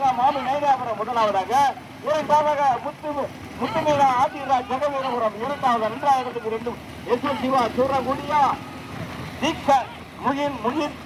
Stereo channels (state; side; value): identical; both; correlation 1.00